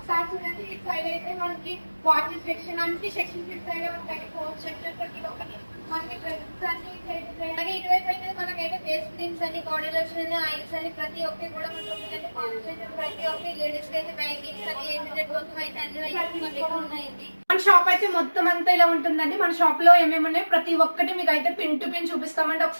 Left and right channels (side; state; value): both; inverted; correlation -1.00